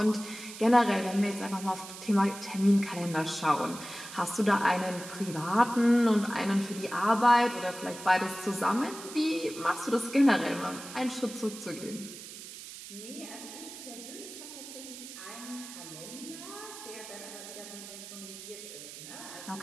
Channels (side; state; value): right; noise; hiss, 13 dB below the sound